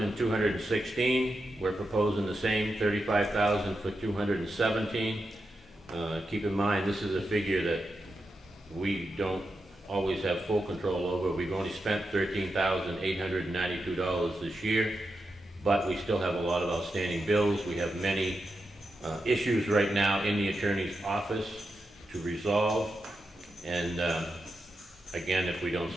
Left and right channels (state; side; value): normal; both; correlation 0.88